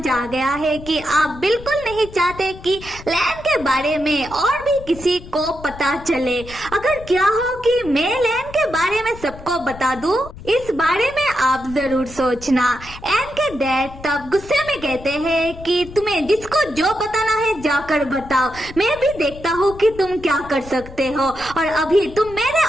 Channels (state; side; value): noise; left; rumble, 16 dB below the sound